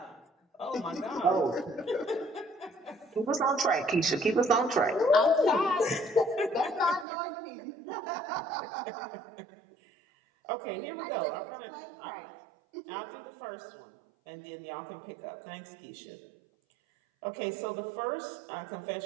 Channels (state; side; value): drops out; left; at 7.1 s